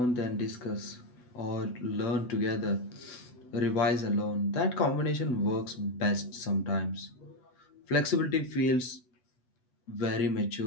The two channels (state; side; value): late; right; 8.0 ms